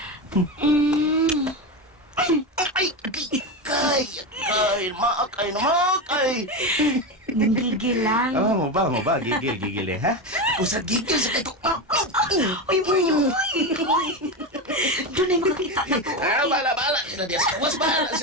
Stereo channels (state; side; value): normal; both; correlation 0.17